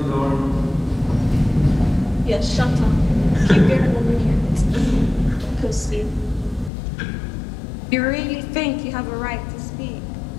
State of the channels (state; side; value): drops out; right; at 6.7 s